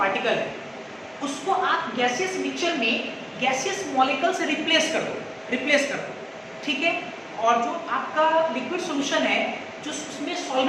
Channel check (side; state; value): both; identical; correlation 1.00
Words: है, उसको आप गैसियस मिक्सचर में गैसियस मॉलिक्यूल से रिप्लेस कर दो, ठीक है। और जो आपका लिक्विड सोल्यूशन है, जो उसमें